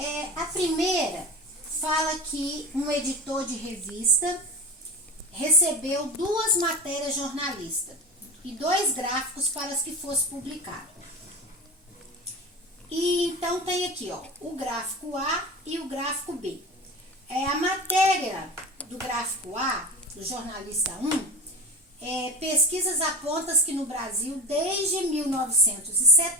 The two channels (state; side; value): normal; both; correlation 0.27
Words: A primeira fala que um editor de revista recebeu 2 matérias jornalistas e 2 gráficos para as que fosse publicado. E então tem aqui, ó, o gráfico A e o gráfico B. A matéria do gráfico A, do jornalista 1, pesquisas apontam que no Brasil, desde